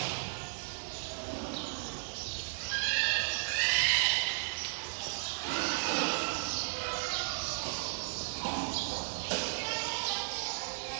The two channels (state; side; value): silent; left; digital silence